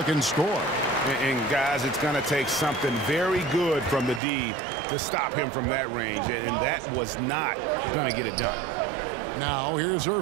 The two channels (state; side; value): drops out; left; at 4.2 s